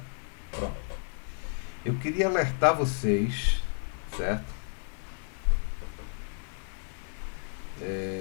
Pronto. Eu queria alertar vocês, certo?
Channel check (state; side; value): silent; right; 57 dB below the other